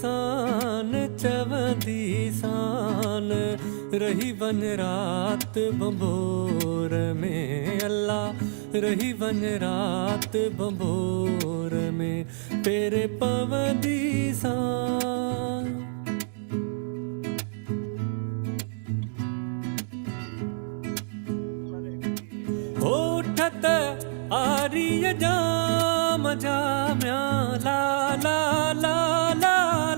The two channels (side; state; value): left; silent; 60 dB below the other